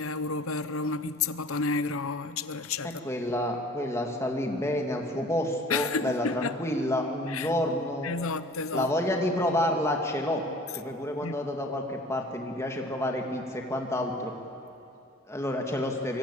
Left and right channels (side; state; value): both; normal; correlation 0.47